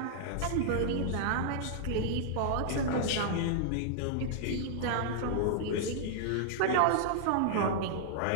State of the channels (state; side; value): different; both; correlation -0.01